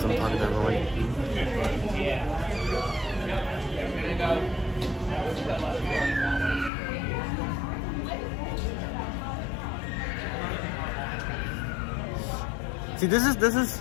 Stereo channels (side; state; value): right; drops out; at 6.7 s